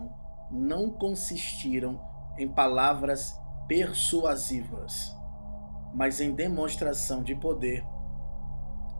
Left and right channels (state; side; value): inverted; both; correlation -1.00